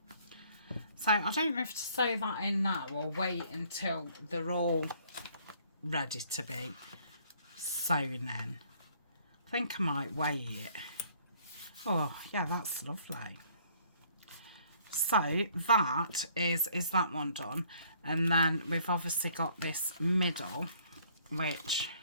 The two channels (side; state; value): both; inverted; correlation -0.61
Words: So I don't know if to sew that in now or wait until they're all ready to be sewn in. I think I might wait it. Oh yeah, that's lovely. So that is that one done, and then we've obviously got this middle, which